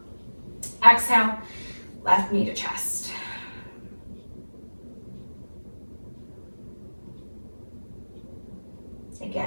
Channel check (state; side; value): inverted; both; correlation -1.00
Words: Exhale, left knee to chest.